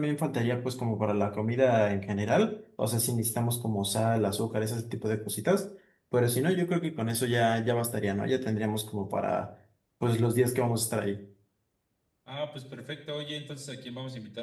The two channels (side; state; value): both; identical; correlation 1.00